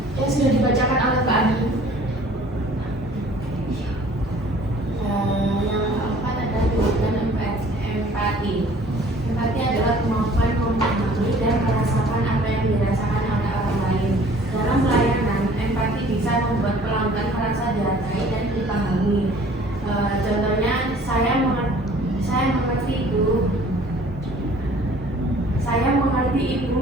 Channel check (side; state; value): both; normal; correlation 0.52